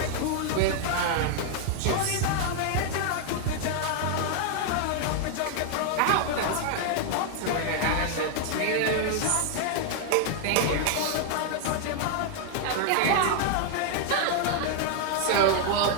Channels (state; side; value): different; both; correlation 0.00